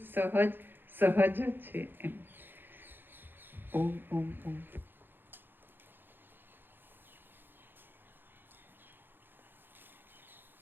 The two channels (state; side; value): late; left; 0.098 ms